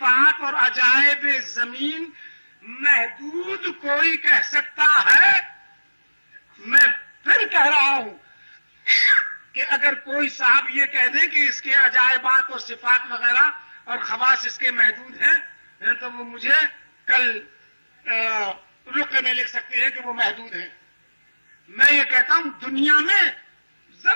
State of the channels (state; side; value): inverted; both; correlation -1.00